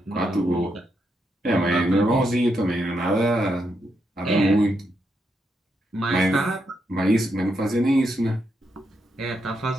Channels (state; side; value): normal; both; correlation 0.81